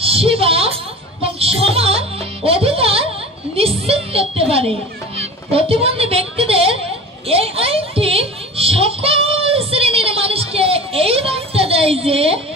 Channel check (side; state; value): both; normal; correlation 0.36